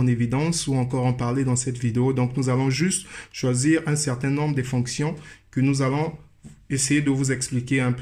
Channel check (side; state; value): both; identical; correlation 1.00